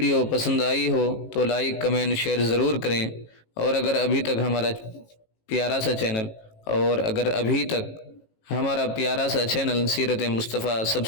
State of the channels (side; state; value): right; late; 18 ms